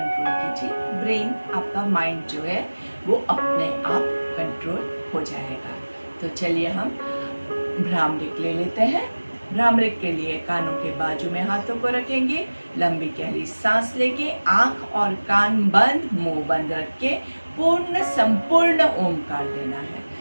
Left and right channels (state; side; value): inverted; both; correlation -1.00